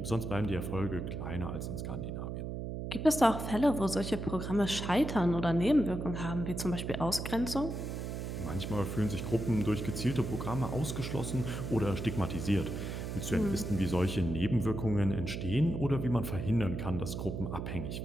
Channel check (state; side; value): noise; right; hum, 5 dB below the sound